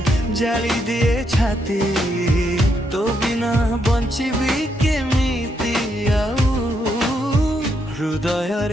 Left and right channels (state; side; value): normal; both; correlation 0.78